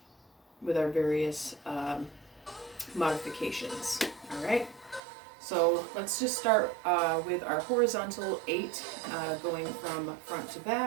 with our various modifications. All right. So let's just start with our horizontal 8, going from front to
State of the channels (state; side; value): drops out; left; at 5.0 s